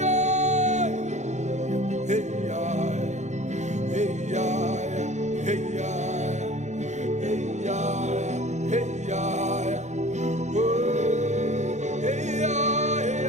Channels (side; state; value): left; late; 0.34 ms